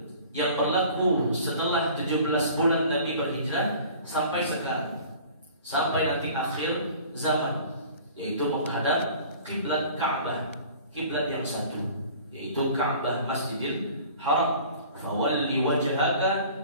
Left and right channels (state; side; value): inverted; both; correlation -0.46